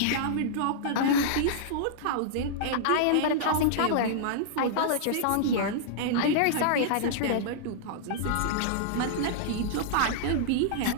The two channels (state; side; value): different; both; correlation -0.02